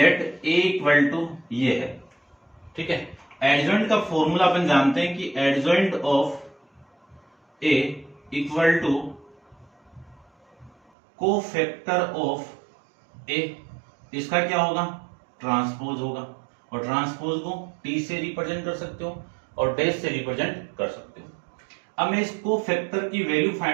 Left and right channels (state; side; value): drops out; left; at 10.8 s